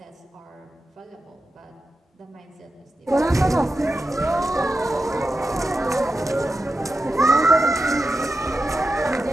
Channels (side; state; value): both; normal; correlation 0.90